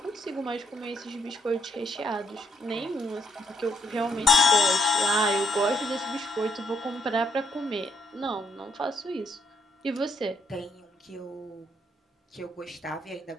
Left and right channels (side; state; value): both; normal; correlation 0.71